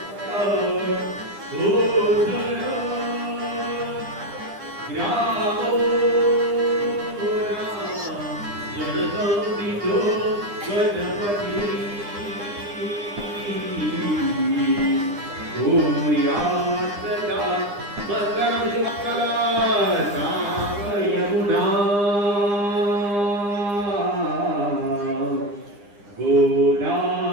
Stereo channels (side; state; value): left; late; 9.9 ms